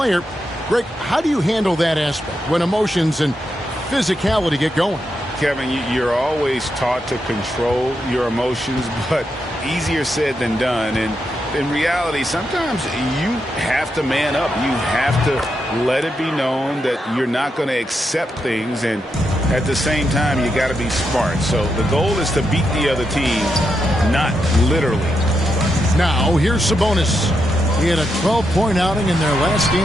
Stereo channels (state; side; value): normal; both; correlation 0.84